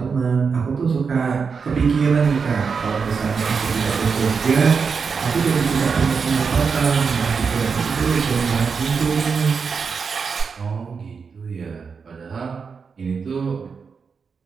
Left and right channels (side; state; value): left; quieter; 5.6 dB